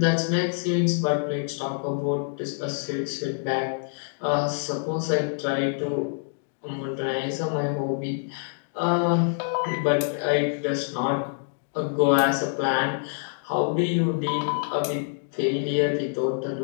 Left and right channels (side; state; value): right; silent; digital silence